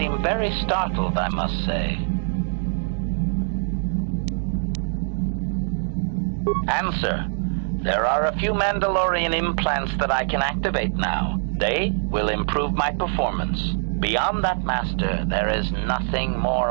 very startled, I must say. Answer. There are a few Mandalorian implants that I can activate now. They will improve my performance. Beyond that, Master, there is nothing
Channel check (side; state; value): left; silent; 63 dB below the other